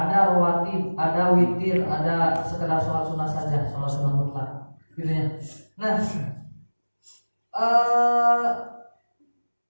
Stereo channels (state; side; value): inverted; both; correlation -1.00